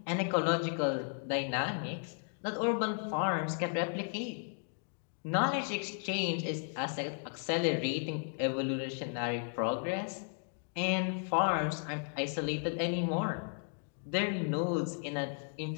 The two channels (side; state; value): right; silent; 55 dB below the other